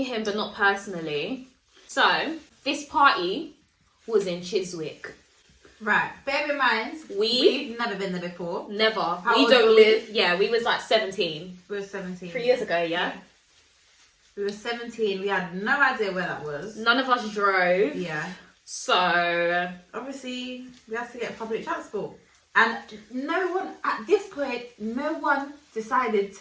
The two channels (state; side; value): identical; both; correlation 1.00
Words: him, but not personally. So this party was in Chiswick. Right. Bear in mind, we've never been there before. Never. How we old don't were live. Yeah, we was like 17. We were 17. 3 years ago, yeah. We were 17. We had no idea where that was. None of us drove. Yeah. So obviously we had to get public transport, and no one at this point, no one decided